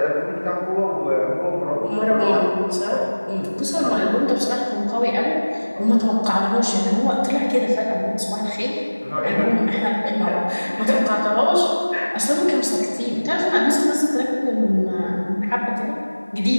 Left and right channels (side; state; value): both; inverted; correlation -1.00